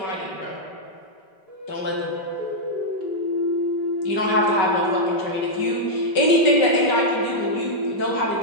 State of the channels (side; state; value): right; late; 5.1 ms